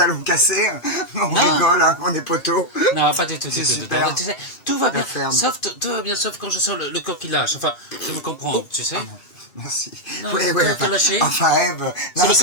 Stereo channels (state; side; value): late; right; 2.5 ms